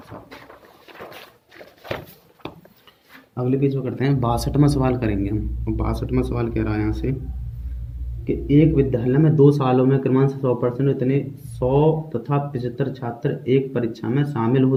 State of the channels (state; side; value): identical; both; correlation 1.00